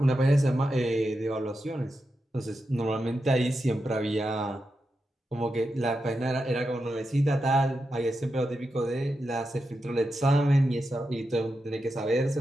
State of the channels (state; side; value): normal; both; correlation 0.88